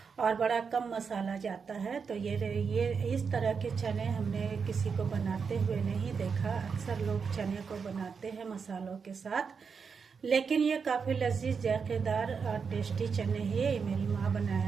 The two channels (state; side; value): quieter; left; 5.8 dB